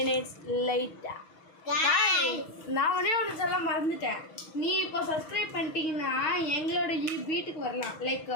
லேட்டா Guys. நான் ஒன்று சொல்ல மறந்துட்டேன். நீ இப்போ சப்ஸ்கிரைப் பண்ணிட்டீங்கன்னா எங்களோட வீட்டுக்கு வரலாம். லைக்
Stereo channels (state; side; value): late; right; 6.3 ms